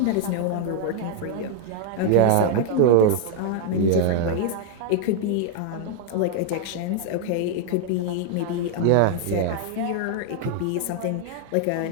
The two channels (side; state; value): both; different; correlation 0.00